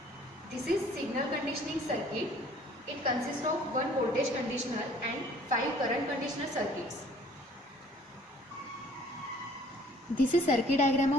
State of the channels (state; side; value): normal; both; correlation 0.55